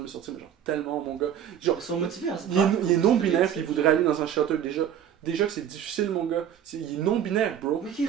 me sortir, mais genre, tellement, mon gars. Genre, Ils sont motivés à se il est, battre. il est non-binaire, puis il voudrait aller dans un shelter, déjà que c'est difficile, mon gars. Il est non-binaire, bro. Mais qui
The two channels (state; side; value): quieter; left; 9.4 dB